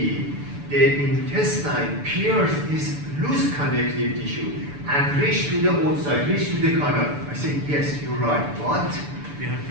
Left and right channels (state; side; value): late; left; 6.9 ms